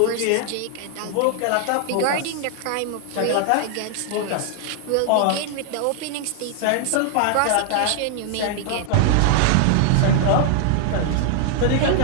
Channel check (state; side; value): different; both; correlation 0.00